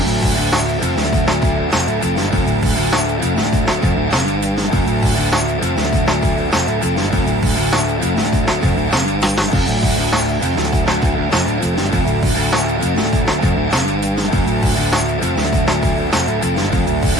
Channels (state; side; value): normal; both; correlation 0.58